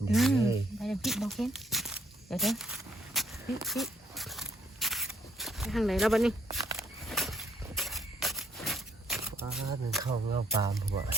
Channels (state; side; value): normal; both; correlation 0.69